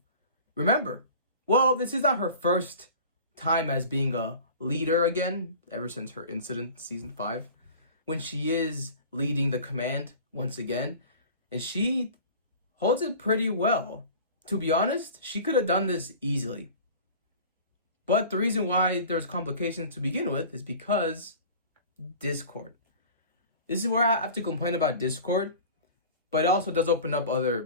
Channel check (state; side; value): inverted; both; correlation -0.40